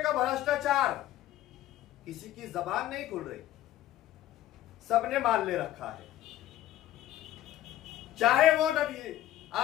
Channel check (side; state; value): right; quieter; 13.7 dB